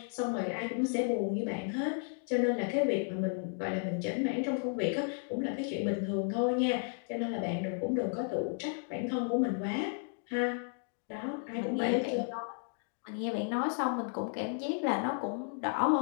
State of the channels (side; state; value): right; silent; 55 dB below the other